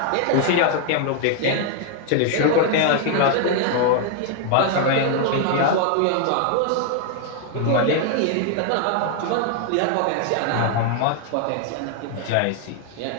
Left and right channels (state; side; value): different; both; correlation 0.00